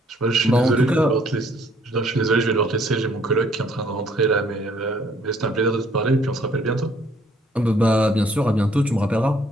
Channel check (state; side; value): normal; both; correlation 0.63